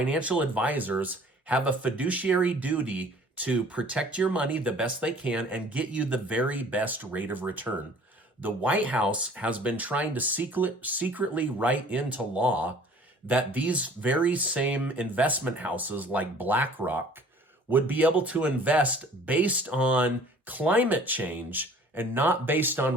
advisors have a fiduciary duty to protect your money the best they can and get you the very best rate of return. The White House has been trying to secretly write into law that these very same investment houses like BlackRock would be able to invest based on climate change and not based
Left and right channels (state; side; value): normal; both; correlation 0.51